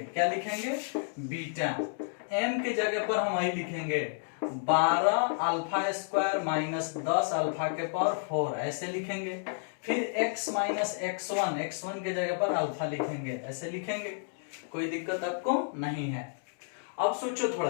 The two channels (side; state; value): right; silent; digital silence